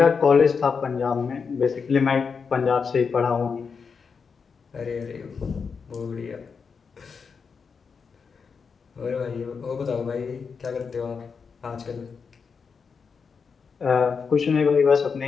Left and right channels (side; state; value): right; quieter; 5.6 dB